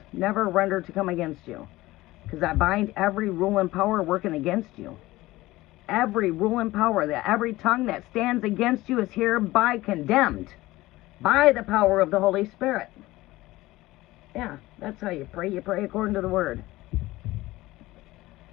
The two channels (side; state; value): right; quieter; 18.3 dB